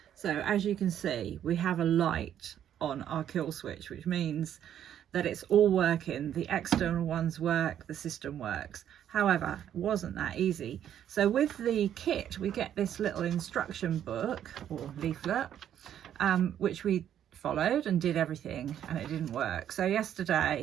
So as you can see, we have a light on our kill switch, which means that it's all working. The external ones work, the system works. However, it wasn't that easy. So with the kit, we get this little instruction book or leaflet, which we followed and did everything, and it didn't work. So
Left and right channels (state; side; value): quieter; left; 10.2 dB